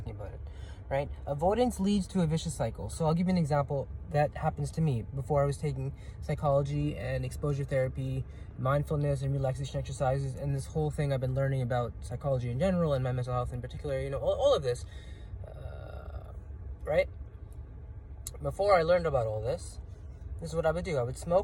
about it, right? Avoidance leads to a vicious cycle. So I'll give you an example that happens to me before I was taking psychology and exposure therapy, mindfulness and relaxation exercises, and this whole thing I've been learning about psychology in general and my mental health in particular, all of this, right? Before I learned about all this is what I would do. I would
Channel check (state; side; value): identical; both; correlation 1.00